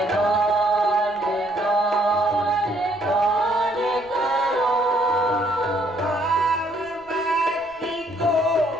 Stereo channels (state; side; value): noise; right; rumble, 29 dB below the sound